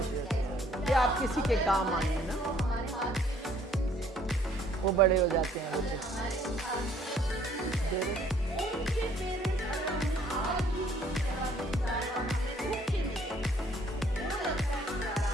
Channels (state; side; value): normal; both; correlation 0.61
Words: होती है कि आप किसी के काम आए ना, वो बड़े हो जाते हैं बच्चे।